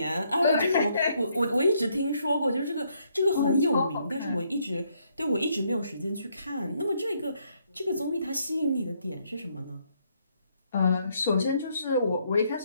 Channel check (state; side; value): inverted; both; correlation -0.72